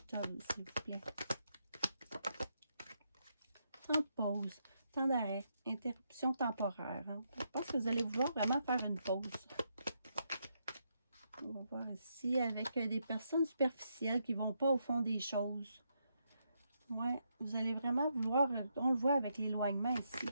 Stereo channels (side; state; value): both; inverted; correlation -0.80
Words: s'il vous plaît? Temps de pause, temps d'arrêt, interruption temporaire. Hein. Je pense que vous allez vouloir vraiment faire une pause. On va voir ici avec des personnes superficielles qui ne vont pas au fond des choses. Ouais, vous allez vraiment vouloir, on le voit avec l'éloignement ici.